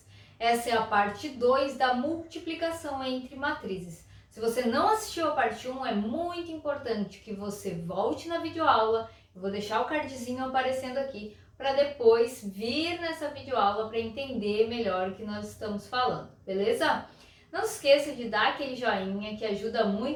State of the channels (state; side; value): identical; both; correlation 1.00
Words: Essa é a parte 2 da multiplicação entre matrizes. Se você não assistiu a parte 1, é muito importante que você volte na videoaula. Eu vou deixar o cardzinho aparecendo aqui para depois vir nessa videoaula para entender melhor o que nós estamos falando, beleza? Não se esqueça de dar aquele joinha que ajuda